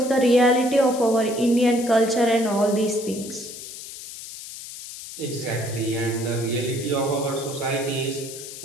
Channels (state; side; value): noise; left; hiss, 12 dB below the sound